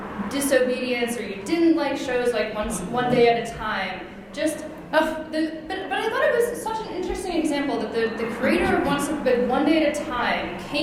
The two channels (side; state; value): both; identical; correlation 1.00